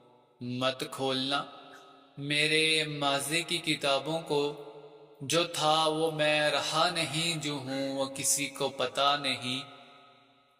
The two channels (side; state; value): both; identical; correlation 1.00